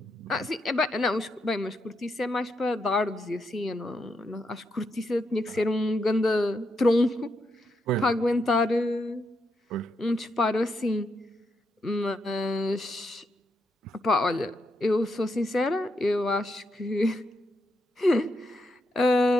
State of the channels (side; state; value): both; normal; correlation 0.81